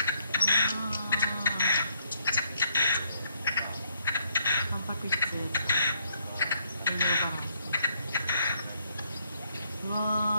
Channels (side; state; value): both; inverted; correlation -0.71